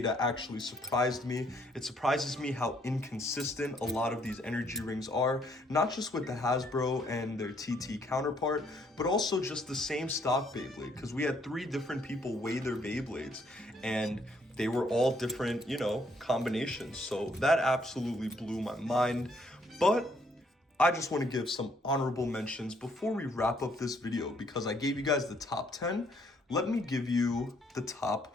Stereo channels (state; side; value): normal; both; correlation 0.68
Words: actually surprised me. It surprises me how inconsistent a lot of these energy rings are, not just with the Hasbro and their TT counterpart, but also just the same stock Beyblade, because we had 3 different people weigh their Beyblades, and they were all different, you know, combinations. So that absolutely blew my mind, but I just want to give some honorable mentions before we wrap up this video, because I gave you guys the top 10. Let me give you the